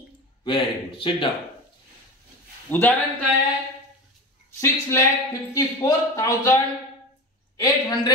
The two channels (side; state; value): both; normal; correlation 0.27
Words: Very good. Sit down. उदाहरण काय आहे?